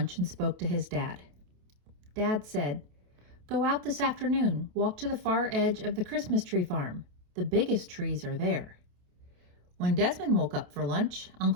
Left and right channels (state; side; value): late; left; 28 ms